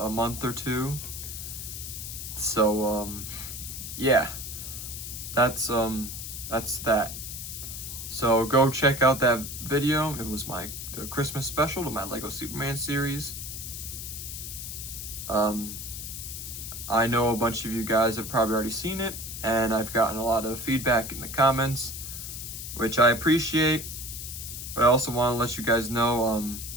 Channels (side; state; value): left; noise; hiss, 8 dB below the sound